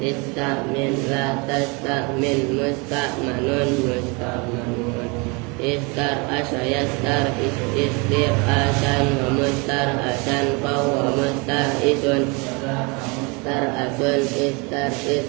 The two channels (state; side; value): quieter; left; 29.5 dB